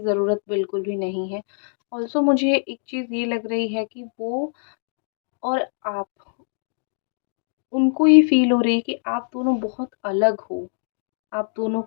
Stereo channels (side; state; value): right; silent; digital silence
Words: ज़रूरत बिल्कुल भी नहीं है। ऑल्सो मुझे एक चीज़ ये लग रही है कि वो और आप, उनको ये फ़ील हो रही है कि आप दोनों बहुत अलग हो। आप दोनों